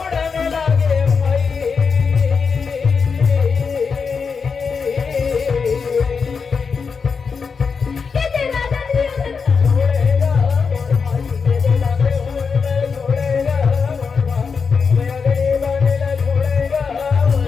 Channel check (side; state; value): right; quieter; 5.5 dB